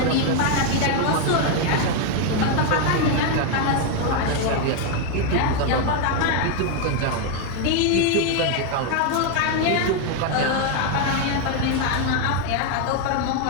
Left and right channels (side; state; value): both; different; correlation 0.01